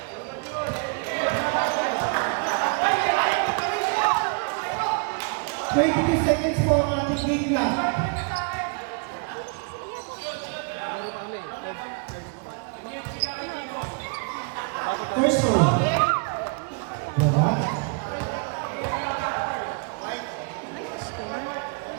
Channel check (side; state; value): left; quieter; 34.4 dB